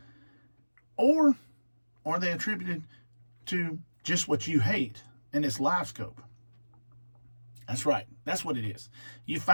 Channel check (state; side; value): inverted; both; correlation -1.00